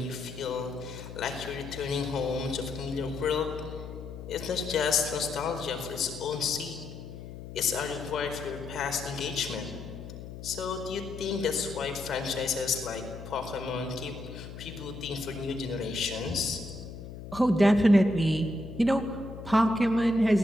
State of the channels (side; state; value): left; noise; hum, 11 dB below the sound